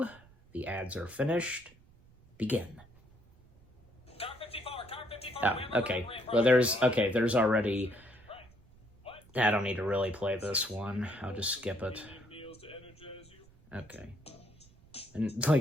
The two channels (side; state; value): right; noise; rumble, 27 dB below the sound